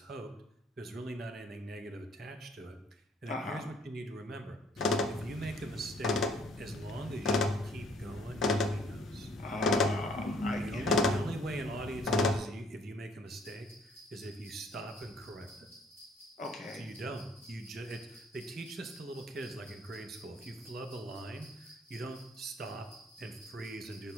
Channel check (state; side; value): normal; both; correlation 0.61